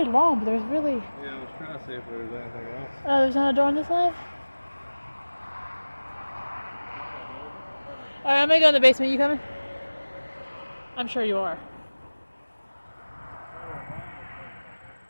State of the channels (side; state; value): both; inverted; correlation -1.00